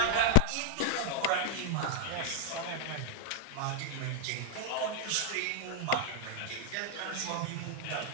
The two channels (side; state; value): both; different; correlation 0.00